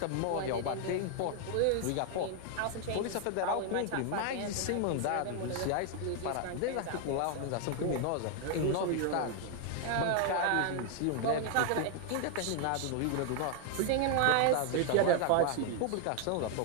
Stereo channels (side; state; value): both; different; correlation 0.00